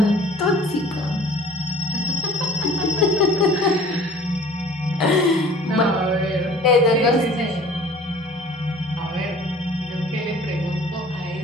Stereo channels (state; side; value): normal; both; correlation 0.47